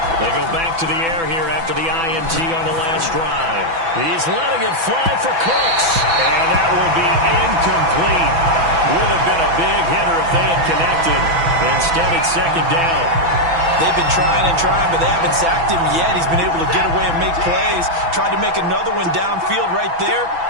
They go back to the air here after the INT on the last drive. He's letting it fly for Cooks, and that will be incomplete. Would have been a big hitter if they had connected. Instead, it's 2nd down. They've been trying and trying, but they haven't sacked him yet. He's been able to get away and make plays. Tried to make another one downfield right there,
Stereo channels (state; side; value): late; left; 6.0 ms